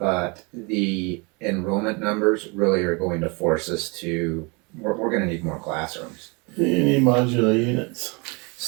the enrollment numbers really are going to force us to, we're going to need more classrooms. You need modular units.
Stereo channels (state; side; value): quieter; left; 29.9 dB